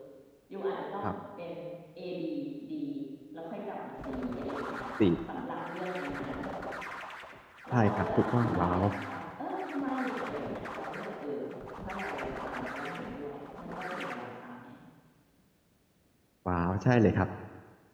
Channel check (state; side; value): identical; both; correlation 1.00